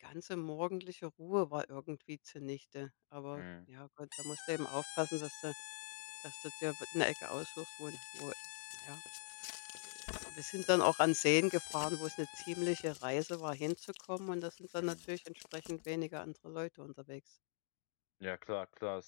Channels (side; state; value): right; silent; digital silence